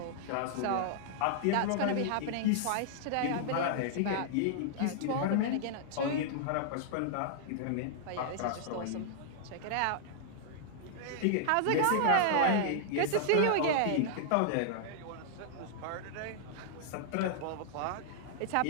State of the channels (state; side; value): different; both; correlation -0.01